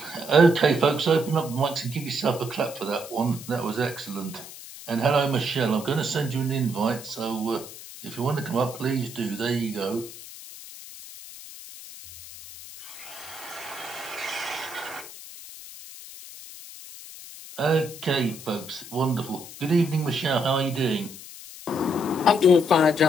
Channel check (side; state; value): left; noise; hiss, 14 dB below the sound